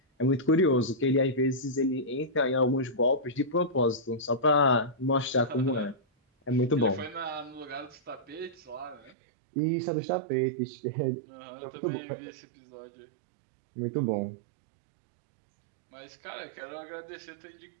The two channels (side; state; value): left; drops out; at 9.2 s